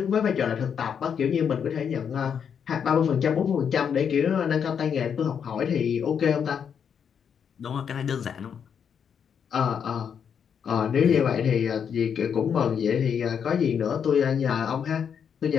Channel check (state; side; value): quieter; right; 7.5 dB